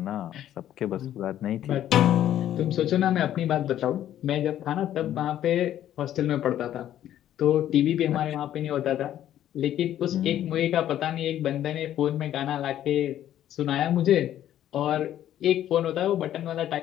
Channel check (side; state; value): right; quieter; 11.7 dB